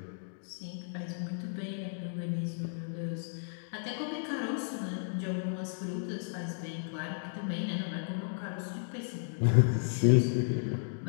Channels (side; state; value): right; silent; digital silence